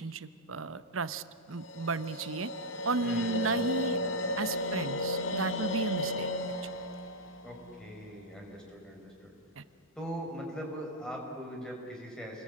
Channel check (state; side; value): normal; both; correlation -0.03